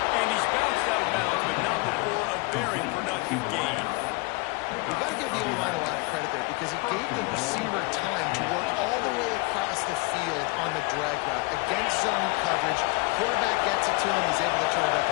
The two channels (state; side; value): quieter; right; 27.3 dB